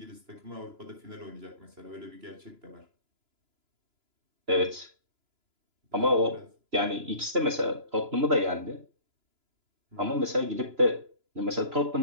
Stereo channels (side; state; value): left; late; 2.9 ms